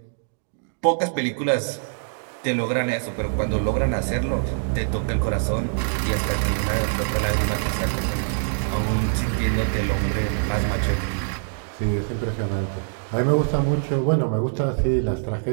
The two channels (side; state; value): left; silent; digital silence